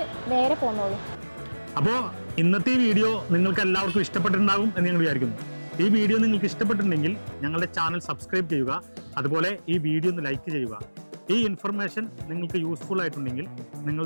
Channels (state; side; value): inverted; both; correlation -1.00